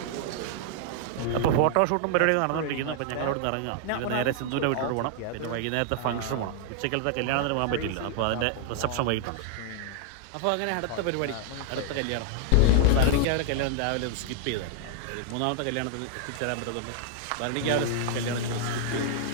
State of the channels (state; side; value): different; both; correlation 0.00